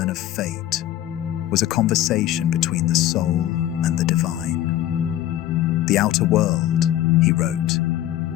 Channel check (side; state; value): right; quieter; 13.1 dB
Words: of fate was a conversation between the soul and the divine. The outer world, he wrote,